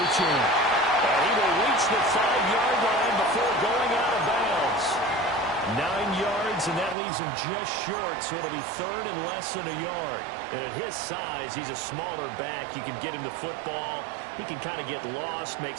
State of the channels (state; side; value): drops out; left; at 7.0 s